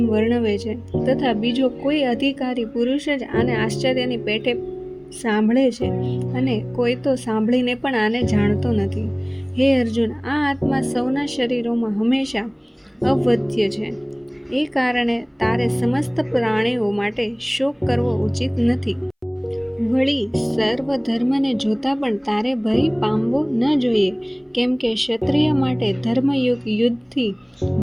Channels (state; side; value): identical; both; correlation 1.00